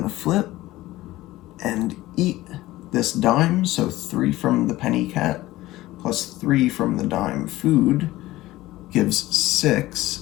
to flip and eat this dime. So 3 from the penny cat plus 3 from the dime food gives 6,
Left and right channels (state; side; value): quieter; right; 17.2 dB